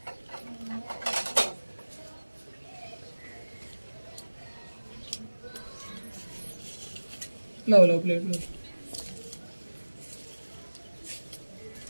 लो प्लेट लो।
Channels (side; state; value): both; inverted; correlation -1.00